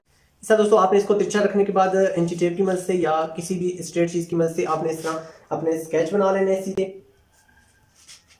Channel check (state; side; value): identical; both; correlation 1.00